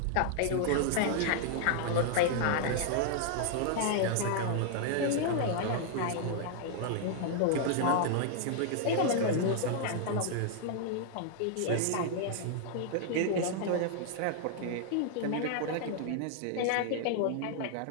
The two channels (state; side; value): different; both; correlation 0.00